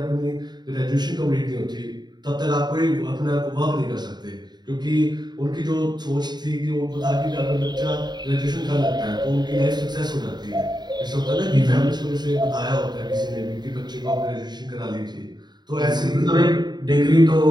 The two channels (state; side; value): late; left; 0.21 ms